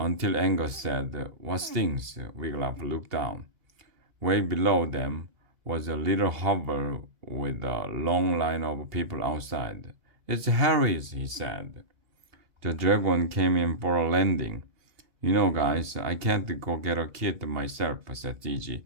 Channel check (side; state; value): left; late; 2.8 ms